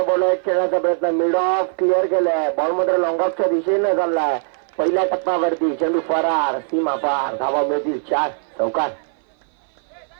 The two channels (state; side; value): silent; left; 58 dB below the other